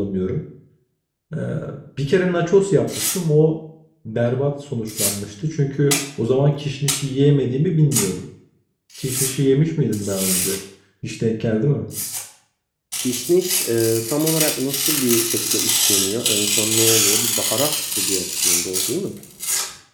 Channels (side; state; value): both; identical; correlation 1.00